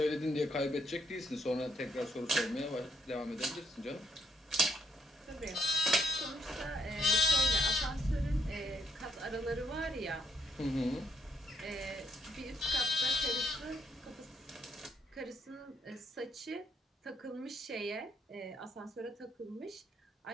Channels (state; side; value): normal; both; correlation 0.75